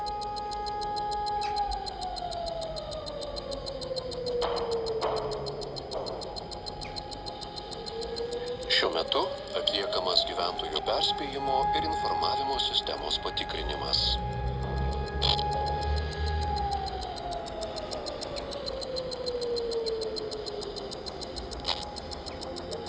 Šiuo metu atliekamas gyventojų perspėjimo ir informavimo sistemos patikrinimas.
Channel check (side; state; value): both; identical; correlation 1.00